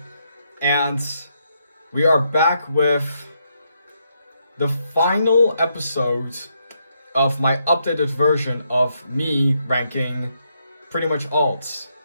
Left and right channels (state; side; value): inverted; both; correlation -0.78